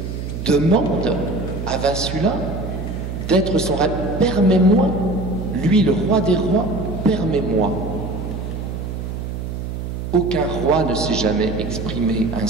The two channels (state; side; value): noise; right; hum, 6 dB below the sound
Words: demande à Vassula d'être son ravisseur. Permets-moi, lui le roi des rois, permets-moi ». Aucun roi ne s'est jamais exprimé